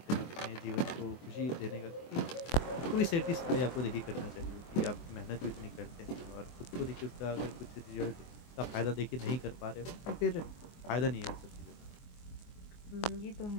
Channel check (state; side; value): late; right; 24 ms